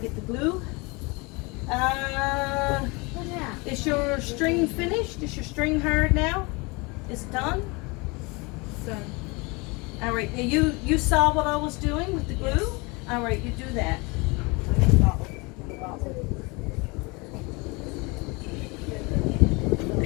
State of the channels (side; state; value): right; quieter; 27.2 dB